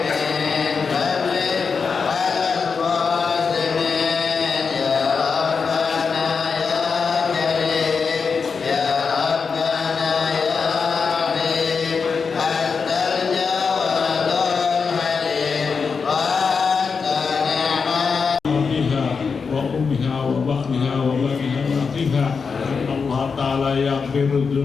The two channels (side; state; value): right; quieter; 5.4 dB